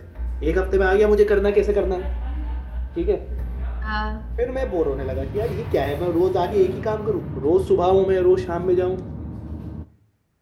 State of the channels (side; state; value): both; identical; correlation 1.00